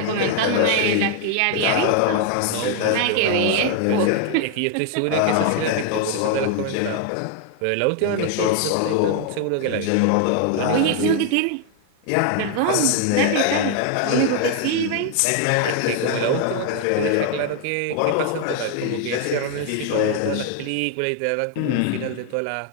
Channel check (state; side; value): different; both; correlation 0.00